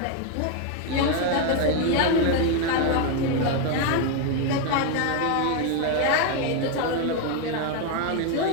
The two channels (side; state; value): both; different; correlation 0.01